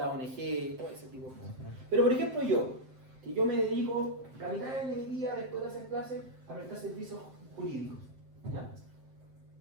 ONG, todo ese tipo de cosas. Pero por ejemplo yo me dedico la mitad de mi día después de hacer clases a prestar servicios jurídicos. ¿Ya?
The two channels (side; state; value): left; late; 7.7 ms